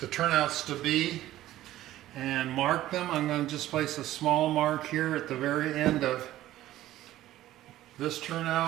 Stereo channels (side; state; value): left; quieter; 14.5 dB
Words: turnouts to be and mark them. I'm going to just place a small mark here at the very end of this